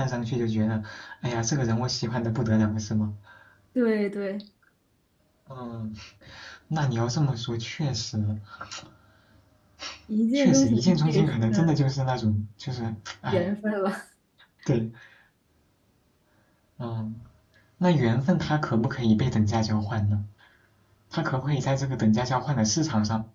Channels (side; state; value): both; identical; correlation 1.00